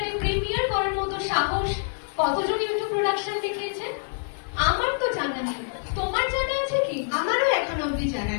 প্রিমিয়ার করার মতো সাহস কতজন ইউটিউব প্রোডাকশন দেখিয়েছেন? আমার তো জানা নেই, তোমার জানা আছে কি? আমারও এখনো অব্দি জানা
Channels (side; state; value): right; silent; digital silence